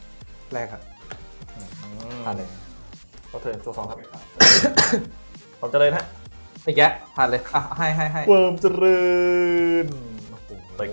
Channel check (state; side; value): inverted; both; correlation -1.00